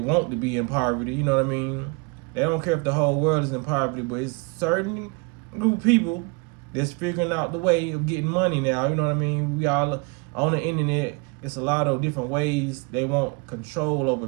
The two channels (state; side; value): quieter; left; 29.6 dB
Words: to be in poverty, you know what I mean? They don't care if the whole world is in poverty, but it's certain group of people that's figuring out the way of getting money now, you know what I mean? We all on the internet, it's a lot of different ways they want control over